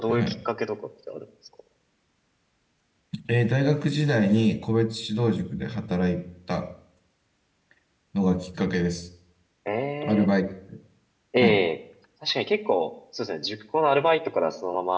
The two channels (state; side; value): identical; both; correlation 1.00